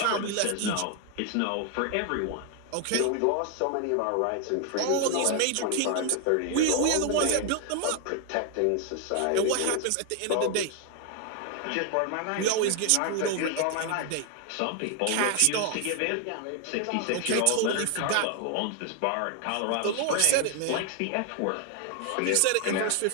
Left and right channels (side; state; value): both; different; correlation 0.00